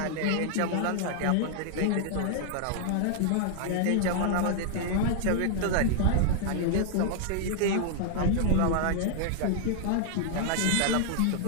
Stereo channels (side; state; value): both; different; correlation -0.01